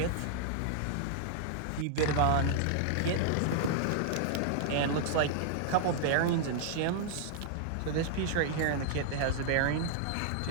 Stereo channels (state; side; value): different; both; correlation -0.01